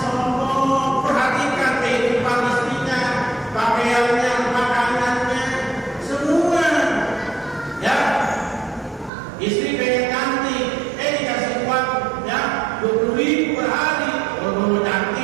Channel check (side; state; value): left; drops out; at 9.1 s